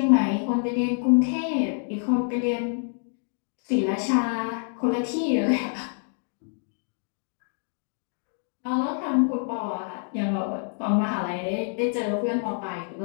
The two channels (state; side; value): silent; right; 57 dB below the other